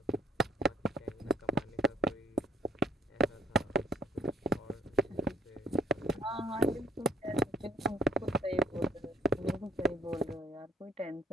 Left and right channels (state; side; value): normal; both; correlation 0.60